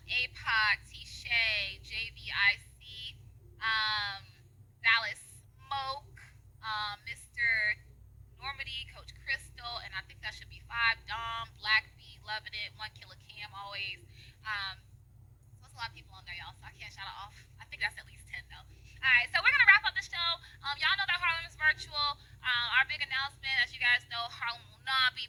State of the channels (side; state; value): both; identical; correlation 1.00